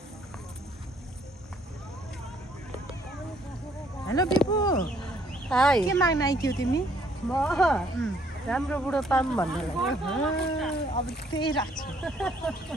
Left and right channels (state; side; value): normal; both; correlation 0.65